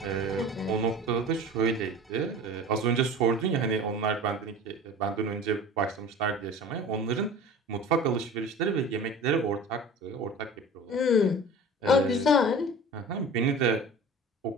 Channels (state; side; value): normal; both; correlation 0.38